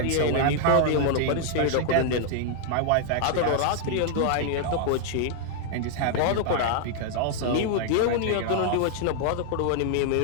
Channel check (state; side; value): different; both; correlation 0.00